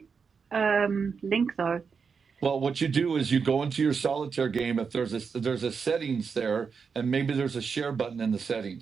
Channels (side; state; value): left; quieter; 5.7 dB